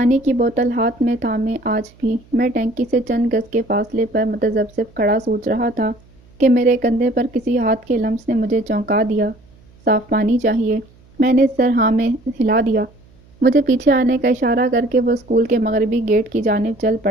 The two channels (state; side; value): noise; right; hum, 28 dB below the sound